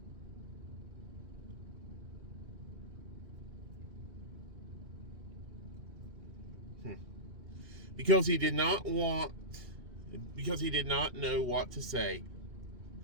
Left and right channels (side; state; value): left; late; 2.8 ms